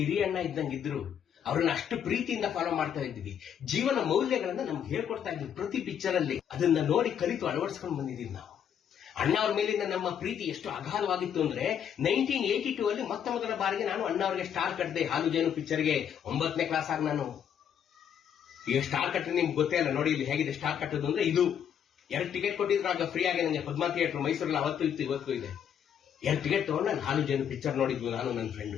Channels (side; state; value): right; quieter; 8.7 dB